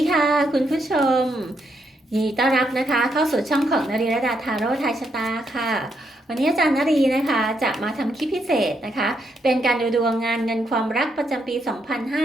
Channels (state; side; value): normal; both; correlation 0.78